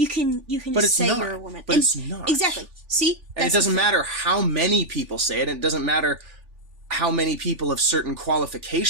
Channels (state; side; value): late; left; 3.4 ms